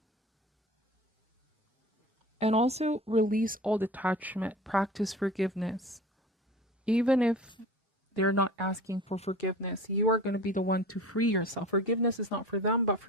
And also release all detachment, practice forgiveness. Even if they're not asking for forgiveness, you are going to be the one to free yourself. Forgiveness is not for them, but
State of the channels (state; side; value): normal; both; correlation 0.39